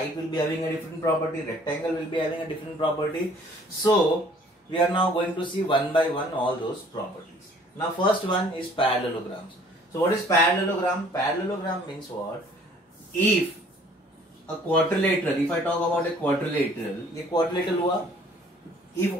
will be having a different property, rectangle will be having a different property. So we are now going to see one by one all those properties. Now first one is parallelograms. So what is parallelogram? Parallelogram means what? If a quadrilateral, if I talk about a quadrilateral, ये quadrilateral हुआ. If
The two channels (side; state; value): both; normal; correlation 0.56